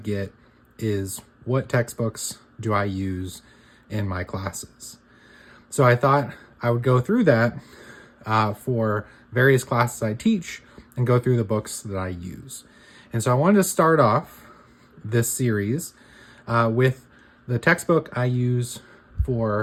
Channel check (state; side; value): identical; both; correlation 1.00